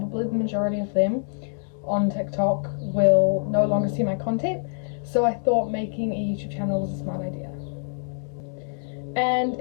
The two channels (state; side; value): silent; right; digital silence